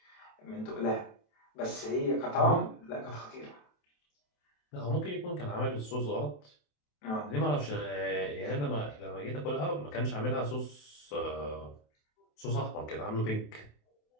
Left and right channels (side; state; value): right; late; 28 ms